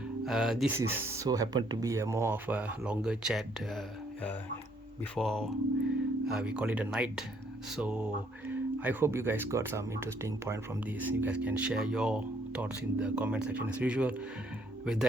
This is so happened to be a more of a longer chat before we call it a night. So I hope you guys got some interesting point from this. You guys can share your thoughts in the comment section as usual. With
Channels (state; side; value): normal; both; correlation 0.68